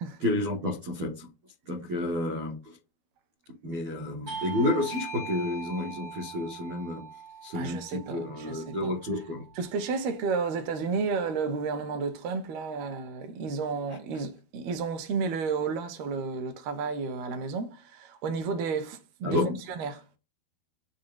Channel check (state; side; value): late; left; 13 ms